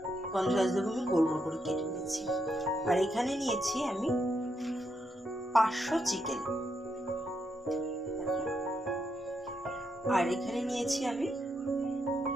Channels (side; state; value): both; normal; correlation 0.80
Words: গন্ধরাজ লেবু আমি গোল গোল করে কেটে নিয়েছি। আর এখানে নিয়েছি আমি 500 চিকেন। আর এখানে নিয়েছি আমি